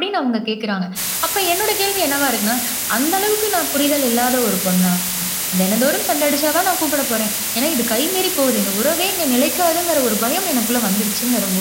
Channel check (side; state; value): both; identical; correlation 1.00